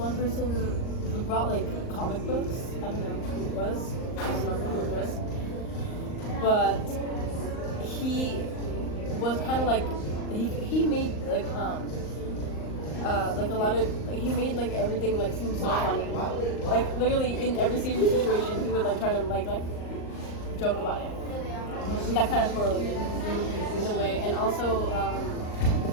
person who brought like comic books. I don't know who it was. I don't remember who it was. But he was kind of like he made like like a lot of he made like everything like seem so funny. Like literally in every serious situation, he would like try to like joke about it. And that kind of correlated in a way, and also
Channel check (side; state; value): right; late; 38 ms